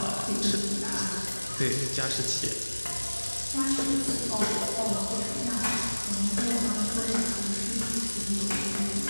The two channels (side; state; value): both; inverted; correlation -1.00